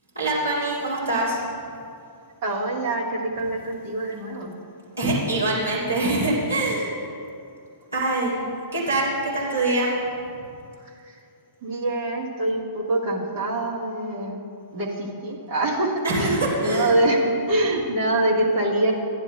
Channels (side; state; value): both; inverted; correlation -0.46